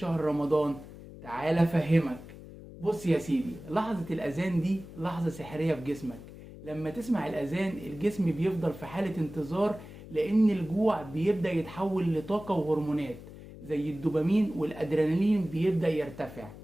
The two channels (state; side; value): noise; left; hum, 15 dB below the sound